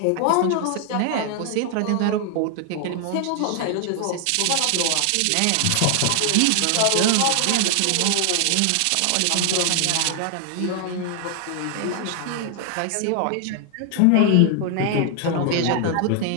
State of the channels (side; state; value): both; different; correlation 0.00